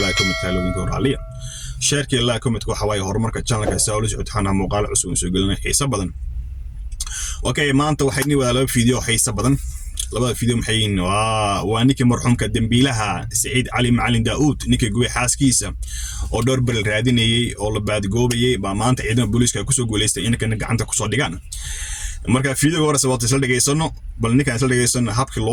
يكون متكلمين كورالية. شركة الله يكون متكو حواي هور مركز channel كساولج وتحنا مقال عسون سجلنا حيس بدن. أوكي ما أنت وحدني ولا فيديو حيس بدن. لبعض فيديو محيين وانك مرحوم كدنبيلها سعيد علي معلم داود نيك جوي حاس كيسة ودور بالراديني أو بعد جوبي ما أنت عندنا بوليس كوسو جوليست إنك عندك كوسو ديجان. marka fiidiyowga hore sababta isla dhageysano bal ninkaan isla dhageysano habkii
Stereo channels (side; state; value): both; identical; correlation 1.00